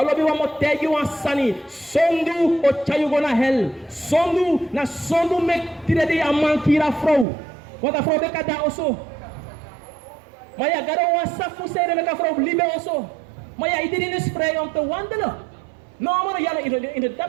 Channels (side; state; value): left; drops out; at 7.2 s